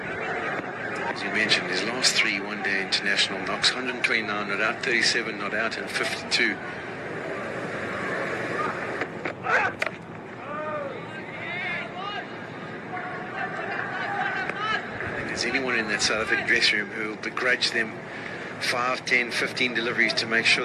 As you mentioned, his last 3 one-day international knocks, 129 not out, 37 not out, and 52. There's anyone in that South African dressing room who will begrudge them 5, 10, 15 deliveries to make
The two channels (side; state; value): both; identical; correlation 1.00